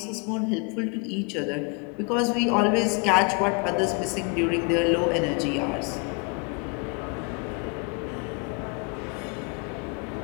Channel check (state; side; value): quieter; right; 31.0 dB